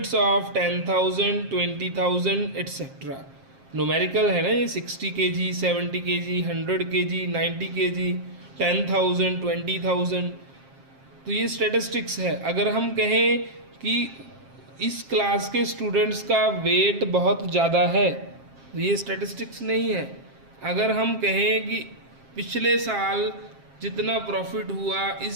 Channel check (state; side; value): late; left; 7.5 ms